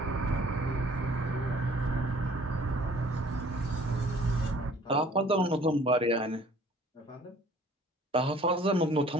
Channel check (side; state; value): both; normal; correlation 0.55